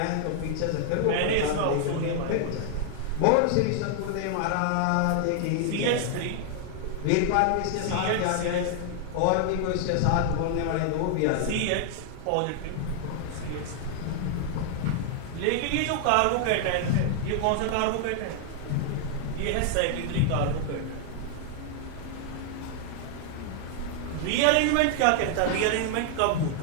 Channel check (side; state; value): both; different; correlation 0.00